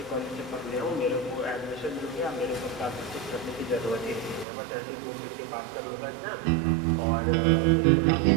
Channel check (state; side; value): drops out; left; at 4.5 s